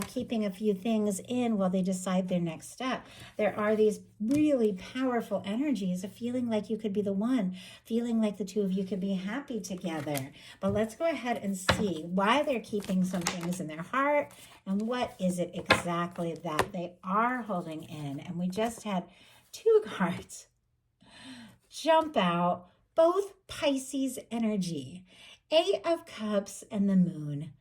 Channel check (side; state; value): both; identical; correlation 1.00